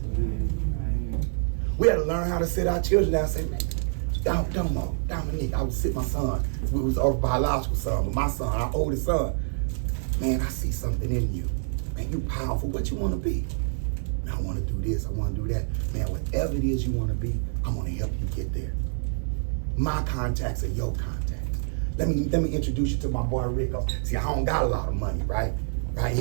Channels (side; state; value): left; silent; digital silence